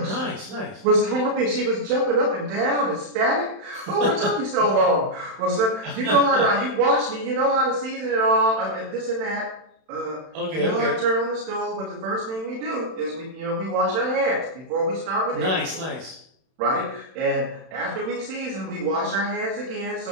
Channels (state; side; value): late; left; 31 ms